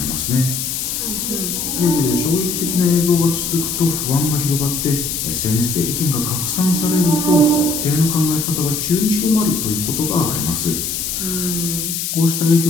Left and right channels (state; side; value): noise; left; hiss, 3 dB below the sound